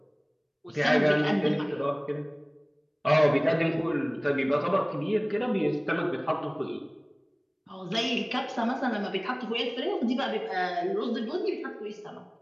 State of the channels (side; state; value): both; identical; correlation 1.00